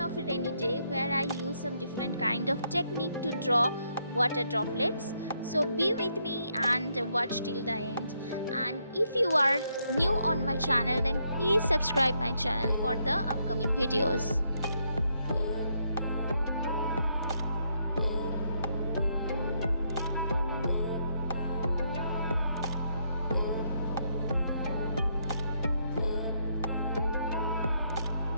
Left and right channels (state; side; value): inverted; both; correlation -0.75